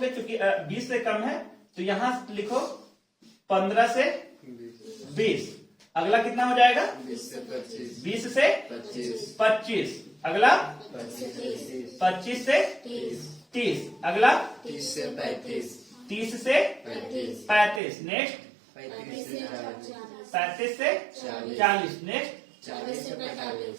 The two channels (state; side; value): drops out; left; at 17.8 s